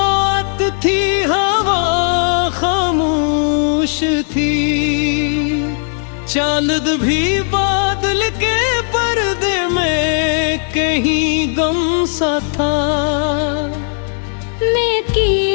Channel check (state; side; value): silent; right; digital silence